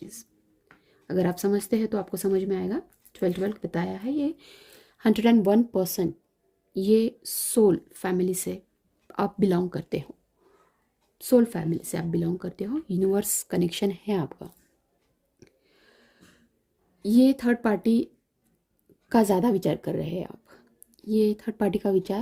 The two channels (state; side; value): identical; both; correlation 1.00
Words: अगर आप समझते हैं तो आपको समझ में आएगा। 12-12 बताया है, ये 101% ये सोल फैमिली से आप बिलोंग करते हो, सोल फैमिली से आप बिलोंग करते हो, यूनिवर्स कनेक्शन है आपका। ये थर्ड पार्टी का ज़्यादा विचार कर रहे हैं आप। ये थर्ड पार्टी का